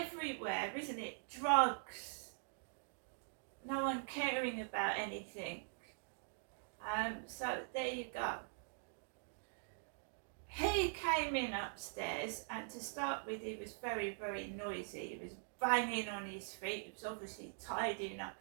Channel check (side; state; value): left; silent; digital silence